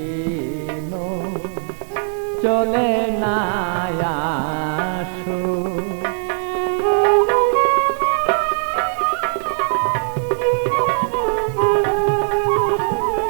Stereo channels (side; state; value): left; silent; 55 dB below the other